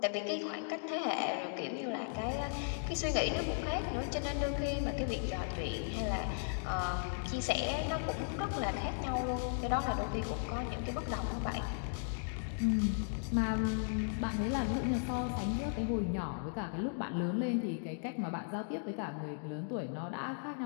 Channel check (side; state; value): right; silent; digital silence